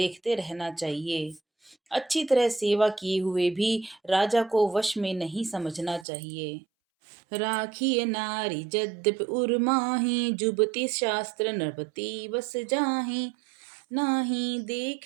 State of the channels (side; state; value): left; drops out; at 6.1 s